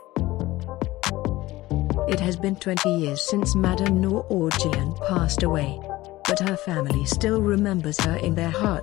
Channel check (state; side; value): quieter; right; 18.0 dB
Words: It has been 20 years since Madam Noor Jehan passed away. But her family still remembers her in their